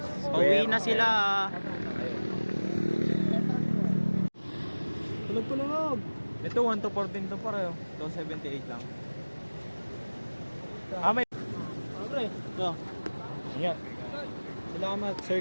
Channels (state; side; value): inverted; both; correlation -1.00